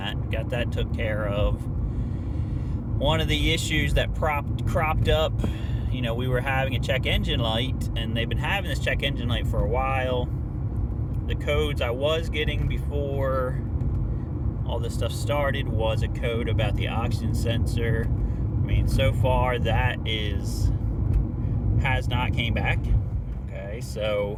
Got that took care of. One of the issues that cropped up, we were having a check engine light, and they've been having this check engine light for a while. The codes I was getting before all this stuff started was a code about the oxygen sensor. So far that has not came back. Okay,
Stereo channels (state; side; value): identical; both; correlation 1.00